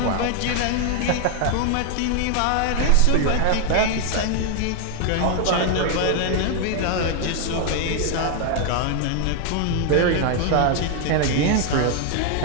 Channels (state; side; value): different; both; correlation 0.00